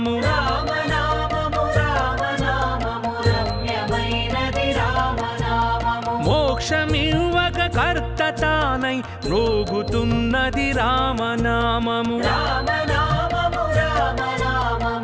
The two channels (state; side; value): identical; both; correlation 1.00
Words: రామనామము రామనామము రమ్యమైనది రామనామము మోక్షమివ్వక కర్త తానై మ్రోగుతున్నది రామనామము రామనామము